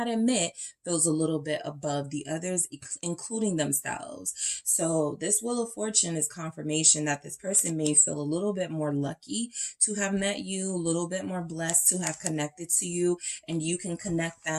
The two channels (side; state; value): both; identical; correlation 1.00